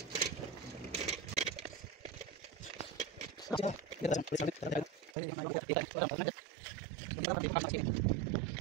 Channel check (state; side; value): drops out; left; at 5.2 s